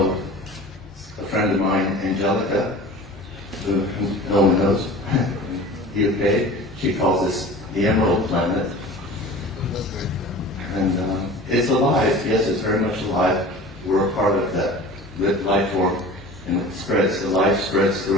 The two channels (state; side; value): normal; both; correlation 0.40